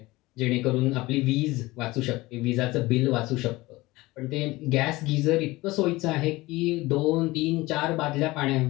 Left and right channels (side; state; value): right; quieter; 20.2 dB